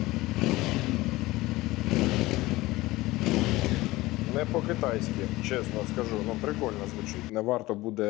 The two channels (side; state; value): right; quieter; 19.2 dB